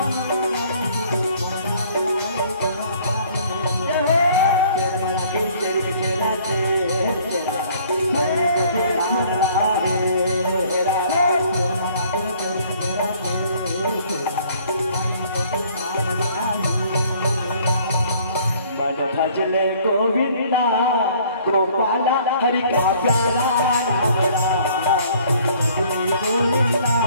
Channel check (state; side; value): inverted; both; correlation -0.58